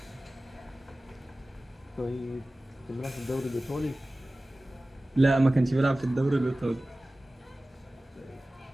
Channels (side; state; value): both; normal; correlation 0.97